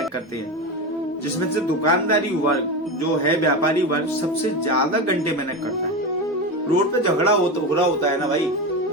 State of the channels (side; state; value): both; normal; correlation 0.20